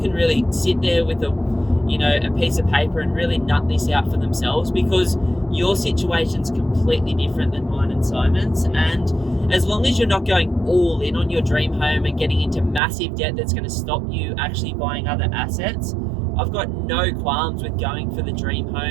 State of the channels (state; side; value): drops out; left; at 12.8 s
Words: really sit there with a piece of paper and really nut this out for themselves, because your situation's completely different than mine and Simon's. And as long as you're not going all in on your dream home and getting into massive debt that's going to stop you actually buying other assets, I've got no qualms with going for the dream